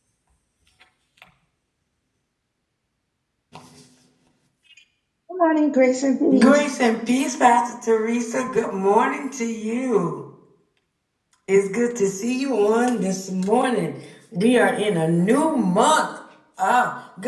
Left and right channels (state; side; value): identical; both; correlation 1.00